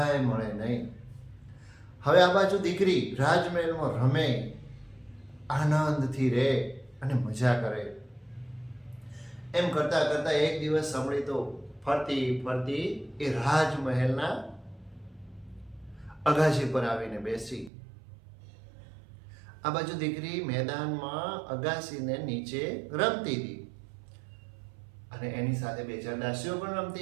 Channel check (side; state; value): left; drops out; at 17.7 s